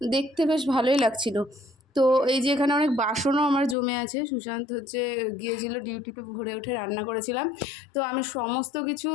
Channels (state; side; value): drops out; right; at 3.8 s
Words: দেখতে, বেশ ভালোই লাগছিল। তো এই যে এখানে অনেক বাসনও আমার জমে আছে। সুশান্ত গিয়েছিল ডিউটিতে, ভোরে উঠে রান্না করেছিলাম। তো আমি সমস্ত কিছু